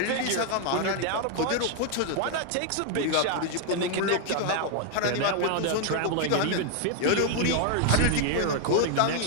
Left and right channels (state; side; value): different; both; correlation 0.00